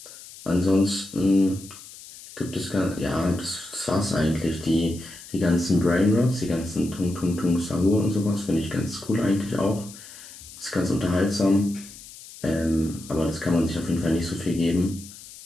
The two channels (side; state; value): left; noise; hiss, 17 dB below the sound